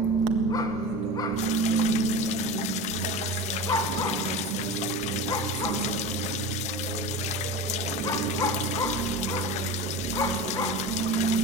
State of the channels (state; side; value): noise; right; hum, 26 dB below the sound